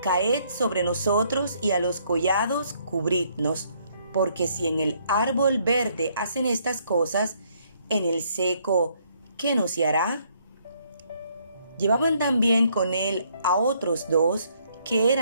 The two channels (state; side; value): inverted; both; correlation -0.68